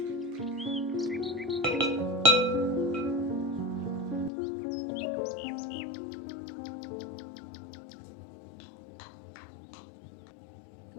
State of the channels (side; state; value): right; drops out; at 4.3 s